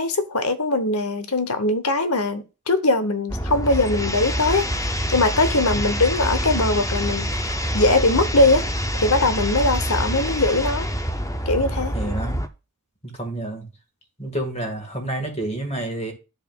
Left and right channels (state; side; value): normal; both; correlation -0.12